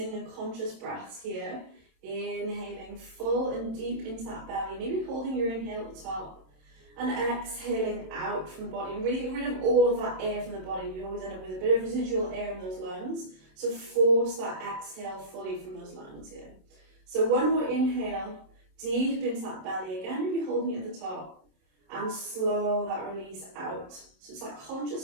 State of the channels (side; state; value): left; late; 27 ms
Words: and conscious breaths here. Inhaling full and deep into that belly, maybe holding your inhale at the top. And exhaling out from the body, and really get rid of all of that air from the body. You always end up with a bit of residual air in those lungs, so force that exhale fully from those lungs here. So one more inhale, deep into that belly, again maybe holding it at the top, and slow that release out. So it's that